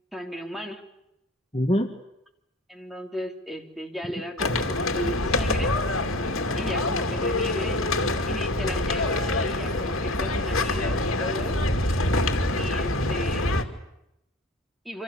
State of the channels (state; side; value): normal; both; correlation 0.38